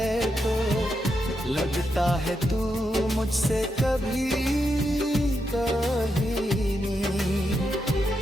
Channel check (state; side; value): normal; both; correlation 0.84